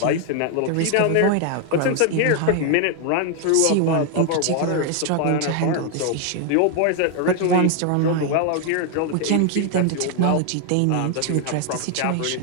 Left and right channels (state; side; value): different; both; correlation 0.00